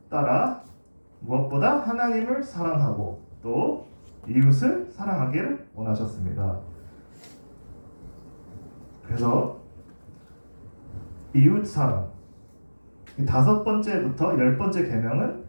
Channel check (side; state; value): both; inverted; correlation -1.00